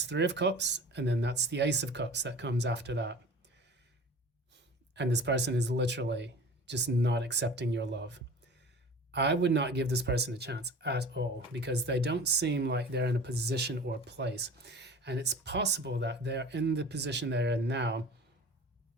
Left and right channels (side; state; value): both; normal; correlation 0.40